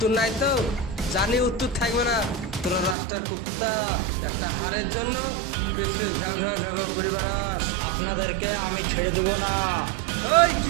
নাই তো? জানি উত্তর থাকবে না। তোরা রাস্তার কুত্তা, একটা হারের জন্য পেছনে ঘ্যাও ঘ্যাও ঘ্যাও ঘ্যাও করে বেড়াস। আপনাদেরকে আমি ছেড়ে দেবো না। এই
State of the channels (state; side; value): drops out; left; at 3.0 s